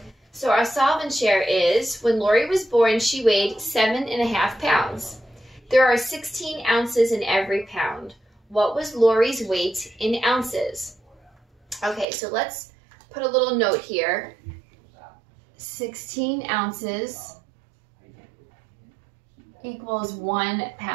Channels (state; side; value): drops out; left; at 12.1 s